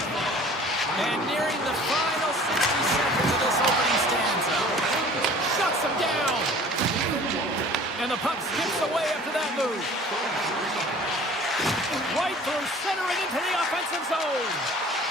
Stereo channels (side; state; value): both; normal; correlation 0.47